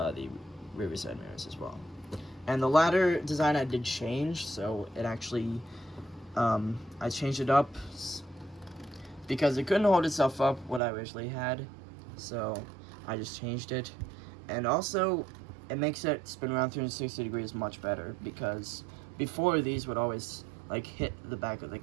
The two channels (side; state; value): left; drops out; at 10.8 s